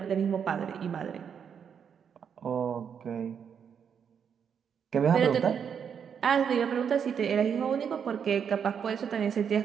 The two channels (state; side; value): quieter; left; 7.4 dB